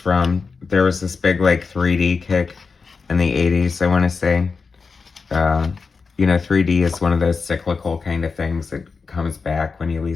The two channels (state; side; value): quieter; right; 4.8 dB